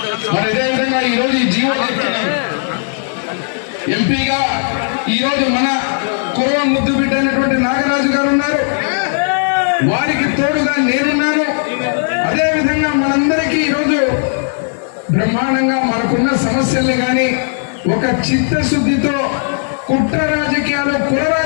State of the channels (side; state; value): right; silent; 67 dB below the other